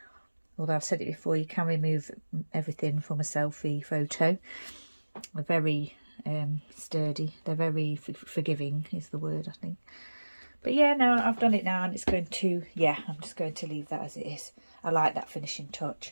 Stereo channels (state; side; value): inverted; both; correlation -1.00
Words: Although I've said it before, you can remove everything from a selfie photo. They're very sturdy. They're very forgiving is the word, I think. But yeah, no, I've done it now, and it's going to, yeah, I'm just going to leave that as it is. I like that finishing touch.